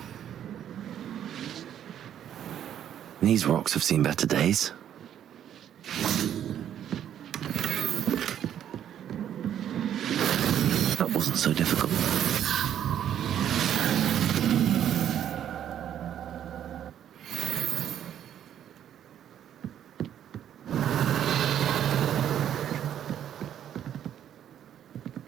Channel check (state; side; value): quieter; left; 10.1 dB